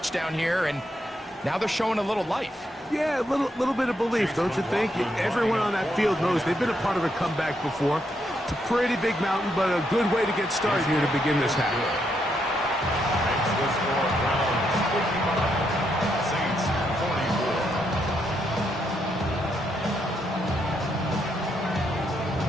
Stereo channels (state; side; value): normal; both; correlation 0.78